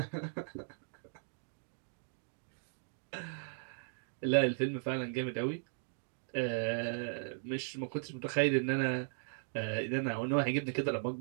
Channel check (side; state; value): left; silent; digital silence